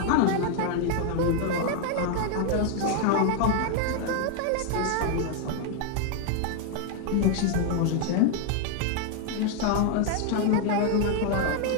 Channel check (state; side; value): different; both; correlation 0.00